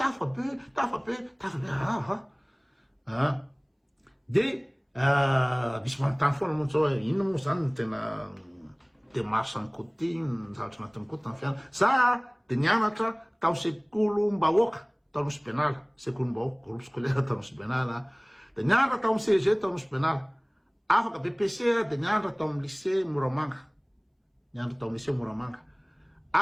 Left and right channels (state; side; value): identical; both; correlation 1.00